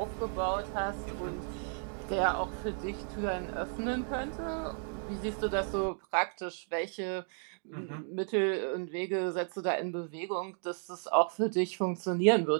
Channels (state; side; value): silent; left; 55 dB below the other